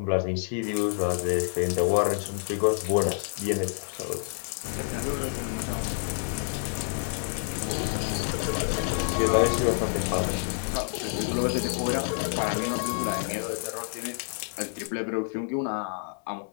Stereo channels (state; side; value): silent; right; 56 dB below the other